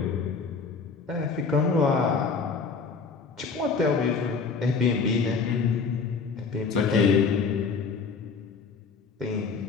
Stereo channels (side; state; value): right; quieter; 5.0 dB